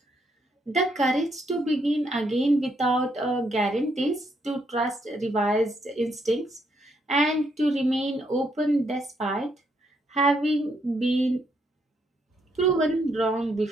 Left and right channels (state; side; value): normal; both; correlation 0.75